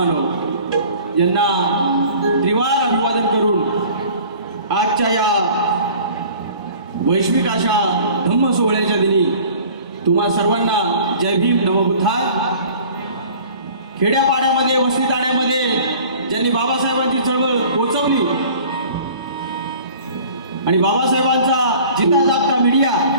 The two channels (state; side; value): inverted; both; correlation -0.47